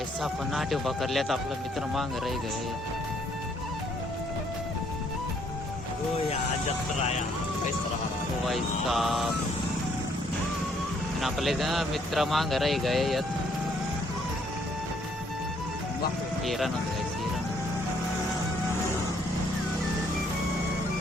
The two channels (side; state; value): both; normal; correlation 0.67